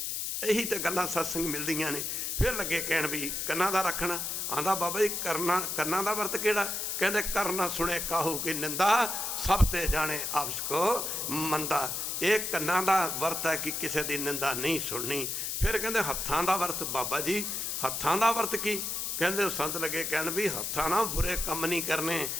यही तो गल्लां सत्संग मिलदियां ने। फिर लगे कहण भी कन्ना दा रखना। आंदा बाबा जी कन्ना दा वर्त किहड़ा। कहंदे करना सुने काहू की निंदा, सब ते जाने आपस को मंदा। ये कन्ना दा वर्त है कि किसी दी निंदा नहीं सुननी। फिर कहंदे हत्थां दा वर्त। बाबा जी हत्थां दा वर्त की। कहंदे संत लगे कहण भी हत्थां ना बुरे कम नहीं करने,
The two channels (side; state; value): left; noise; hiss, 2 dB below the sound